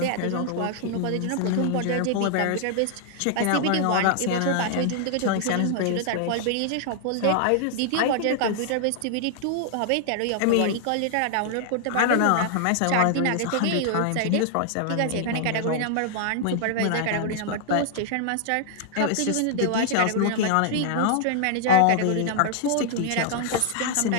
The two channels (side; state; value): both; different; correlation -0.01